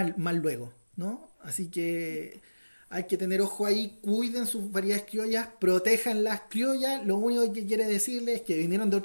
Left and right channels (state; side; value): inverted; both; correlation -1.00